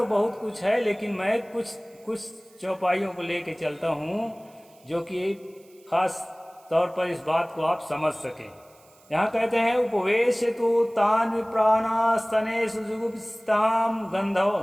बहुत कुछ है, लेकिन मैं कुछ चौपाइयों को लेके चलता हूँ जो कि खास तौर पर इस बात को आप समझ सकें। यहाँ कहते हैं उपवेश तु तान विप्राणास्तने सुजुगुप्ताम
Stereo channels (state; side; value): noise; right; hiss, 29 dB below the sound